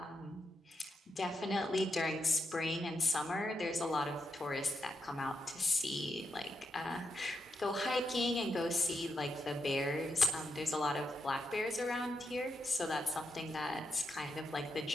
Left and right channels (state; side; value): normal; both; correlation 0.84